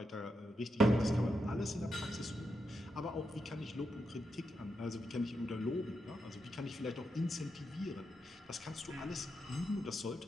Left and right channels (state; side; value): normal; both; correlation 0.84